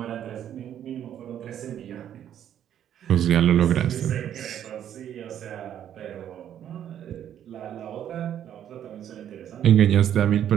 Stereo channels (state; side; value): quieter; left; 10.2 dB